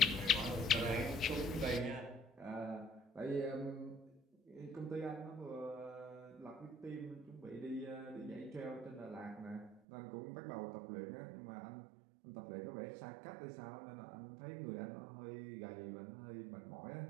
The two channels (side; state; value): left; drops out; at 9.8 s